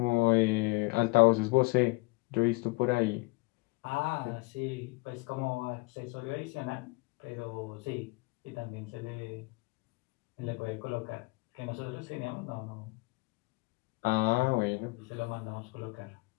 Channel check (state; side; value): quieter; right; 26.0 dB